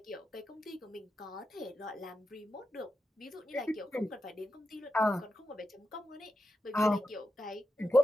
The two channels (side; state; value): both; normal; correlation 0.89